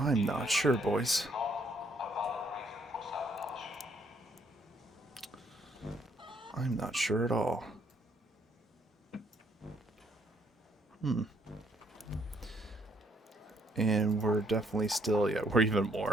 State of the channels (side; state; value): both; normal; correlation 0.69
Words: not sure, boys. I'm not sure at all. And we're definitely still, yeah, we're even